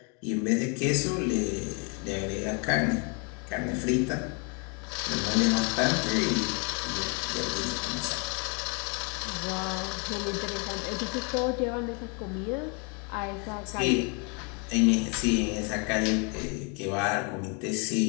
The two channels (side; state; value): right; quieter; 34.7 dB